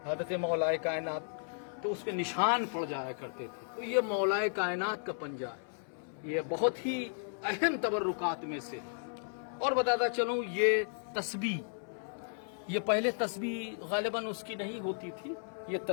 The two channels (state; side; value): silent; right; 55 dB below the other